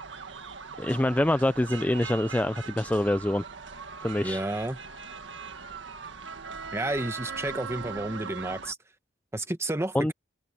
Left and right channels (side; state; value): both; normal; correlation 0.83